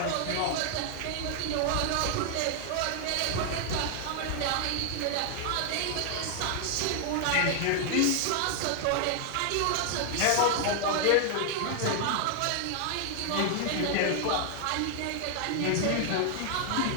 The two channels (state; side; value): different; both; correlation 0.00